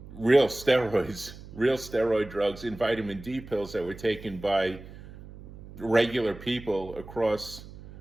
real steroid drugs in vitamin D pills that were taken by regular people across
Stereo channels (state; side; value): noise; right; hum, 16 dB below the sound